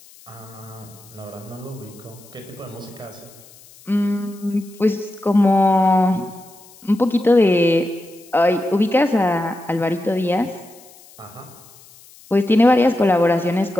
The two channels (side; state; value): left; noise; hiss, 24 dB below the sound